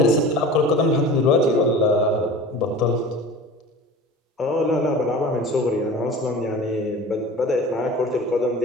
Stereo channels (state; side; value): normal; both; correlation 0.38